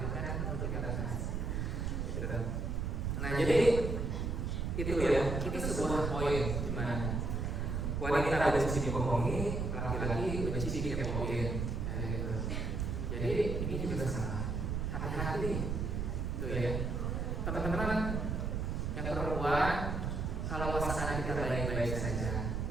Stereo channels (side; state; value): right; noise; rumble, 1 dB below the sound